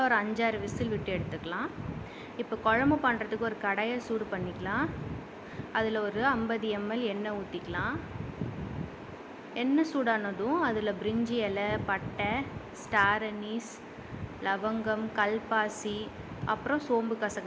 ஒரு 5-6 விசில் விட்டு எடுத்துக்கலாம். இப்போ குழம்பு பண்ணுறதுக்கு ஒரு கடாயை சூடு பண்ணிக்கலாம். அதில் ஒரு 50 ml எண்ணெய் ஊற்றிக்கலாம். எண்ணெய் சூடானதும் அதில் பிரிஞ்சி இலை, பட்டை, ஸ்டார் அனீஸ், லவங்கம், கல்பாசி, அப்புறம் சோம்பு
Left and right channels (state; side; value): identical; both; correlation 1.00